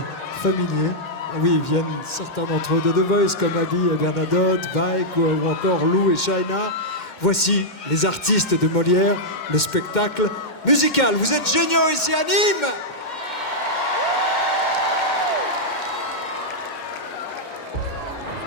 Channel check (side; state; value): right; late; 2.1 ms